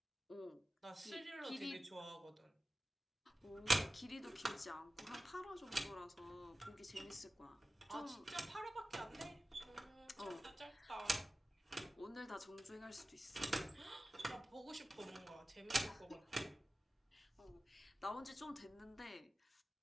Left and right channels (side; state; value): both; normal; correlation 0.96